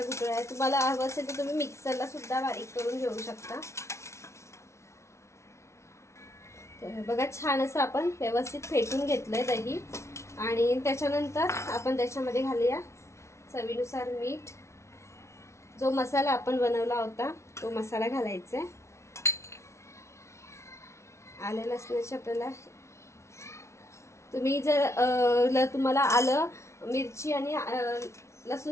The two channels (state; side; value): late; right; 0.13 ms